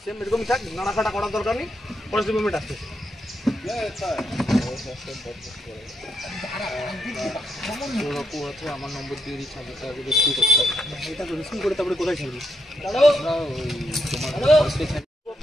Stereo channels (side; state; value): both; normal; correlation 0.80